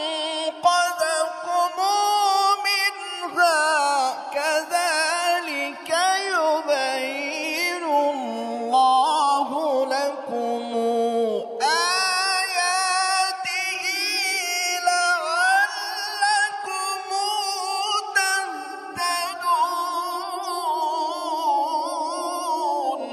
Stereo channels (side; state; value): both; identical; correlation 1.00